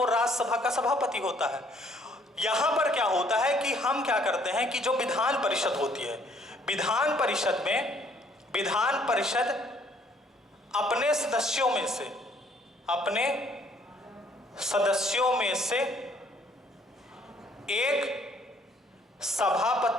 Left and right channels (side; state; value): both; normal; correlation 0.63